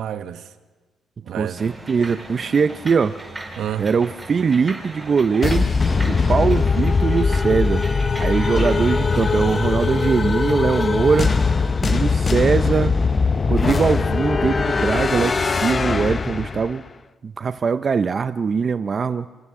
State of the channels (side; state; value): both; normal; correlation 0.85